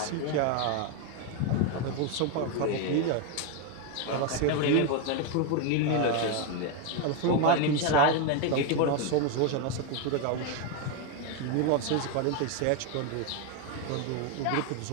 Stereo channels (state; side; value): different; both; correlation 0.01